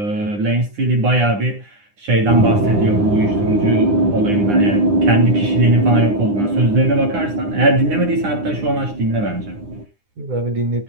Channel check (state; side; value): late; left; 9.8 ms